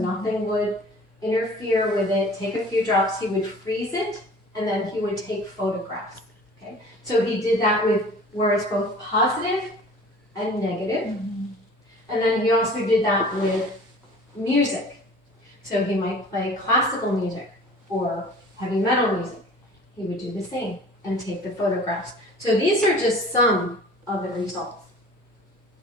would interfere with it, take a few drops, he would freeze it, and then he would take photographs. Okay? So he did that with words both positive and negative. And then he also did that with music. So he might play classical music or heavy metal music. He would do the same and take the photographs. So these are just some of the results.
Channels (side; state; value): both; normal; correlation 0.46